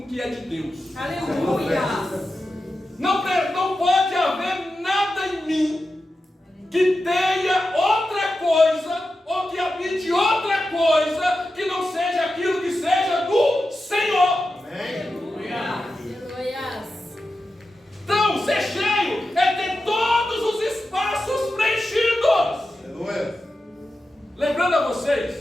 que é de Deus. Aleluia. Não pode haver nada em mim que tenha outra coisa, ou que habite outra coisa, que não seja aquilo que seja do Senhor. Aleluia. Então, ser cheio é ter todos os espaços preenchidos. Aleluia. Lembrando a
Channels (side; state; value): both; normal; correlation 0.91